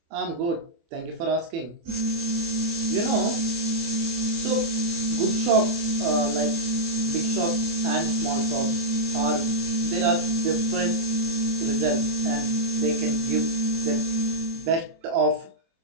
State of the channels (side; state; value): left; late; 24 ms